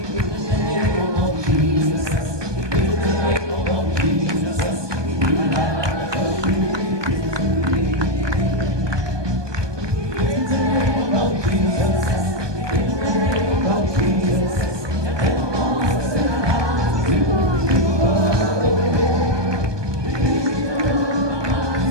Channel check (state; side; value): late; left; 1.2 ms